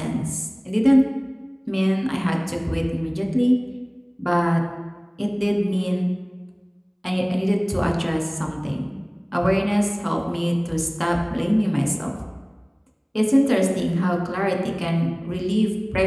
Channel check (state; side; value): identical; both; correlation 1.00